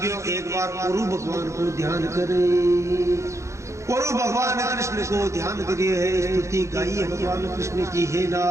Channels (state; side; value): late; left; 0.14 ms